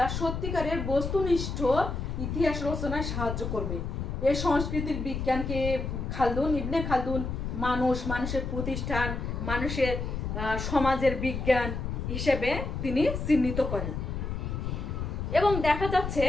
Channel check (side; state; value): left; noise; rumble, 4 dB below the sound